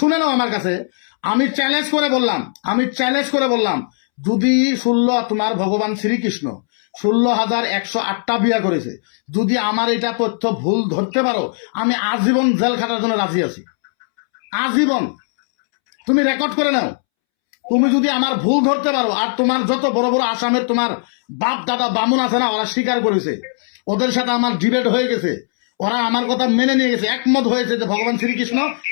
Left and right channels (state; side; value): silent; right; 67 dB below the other